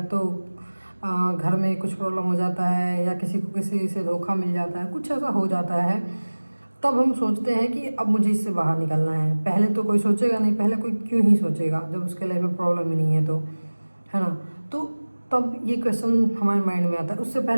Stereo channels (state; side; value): inverted; both; correlation -1.00